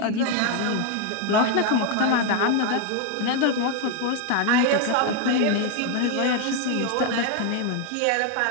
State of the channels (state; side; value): different; both; correlation 0.01